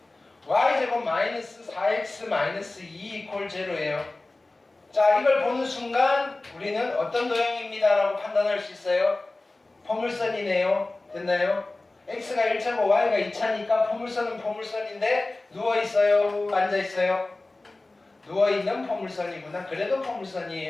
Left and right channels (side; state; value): right; quieter; 3.0 dB